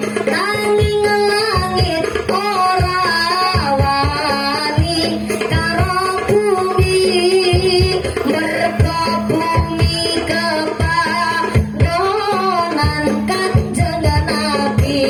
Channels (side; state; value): both; identical; correlation 1.00